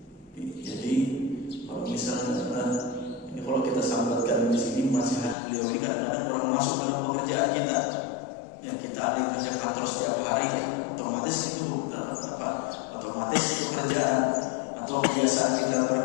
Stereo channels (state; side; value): drops out; right; at 5.4 s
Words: Jadi kalau misalnya ini kalau kita sambatkan di sini nasihat beliau ini, kadang-kadang orang masuk dalam pekerjaan kita, ya kita ada yang kerja kantor setiap hari ya, otomatis itu apa? Otomatis pekerjaan atau kebiasaan kita